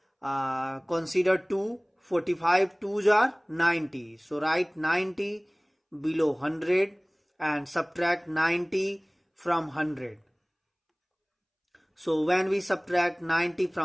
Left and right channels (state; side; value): identical; both; correlation 1.00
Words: consider 2. 45 2s are 90. So write 90 below 100 and subtract 90 from 100. So when we subtract 90